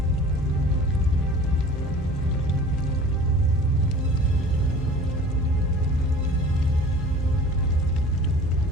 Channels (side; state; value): both; normal; correlation 0.43